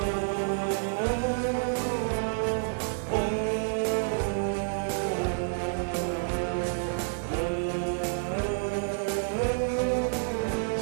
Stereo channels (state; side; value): silent; left; digital silence